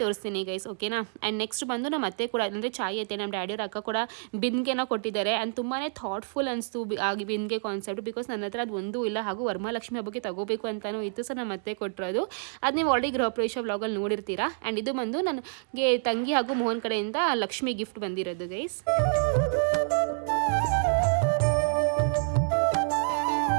ತೋರಿಸ್ತೀನಿ ಗೈಸ್, ಓಕೆನಾ. ಆ್ಯಂಡ್ ನೆಕ್ಸ್ಟ್ ಬಂದು ನಮ್ಮ ಅತ್ತೆ ಕೂಡ, ಅಂದರೆ ಚಾಯ್ ಅತ್ತೆ, ನಮ್ಮ ಡ್ಯಾಡಿಯವ್ರ ಅಕ್ಕ ಕೂಡ ಬಿಂದಿಗೆನ ಕೊಟ್ಟಿದ್ದಾರೆ. ಆ್ಯಂಡ್ ತುಂಬಾ ಥಾಟ್ಫುಲ್ ಅನಿಸ್ತು ಆಗಿ ಬಿಂದಿಗೆ ಕಾನ್ಸೆಪ್ಟ್. ಬಿಕಾಸ್ ನನ್ನ ಹತ್ರ ಅದು ಒಂದೂ ಇಲ್ಲ, ಹಾಗೂ ವರಮಹಾಲಕ್ಷ್ಮಿ ಹಬ್ಬಕ್ಕೆ ತಗೋಬೇಕು ಅಂತಲೂ ಇತ್ತು. ಸೊ ನಮ್ಮ ಅತ್ತೆ ಕೊಟ್ಟಿರೋದು ಅದು ನೀವು ಆಲ್ರೆಡಿ ಗೃಹ ಪ್ರವೇಶ ವ್ಲಾಗಲ್ಲಿ ನೋಡಿರ್ತೀರಾ. ಆ್ಯಂಡ್ ಇದು ಬಂದು ನನಗೆ ತಂಗಿ ಹಾಗೂ ಮೋಹನ್ ಕಡೆಯಿಂದ ಲಕ್ಷ್ಮಿ ಗಿಫ್ಟ್ ಬಂದಿರೋದು ಗೈಸ್.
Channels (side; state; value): left; silent; digital silence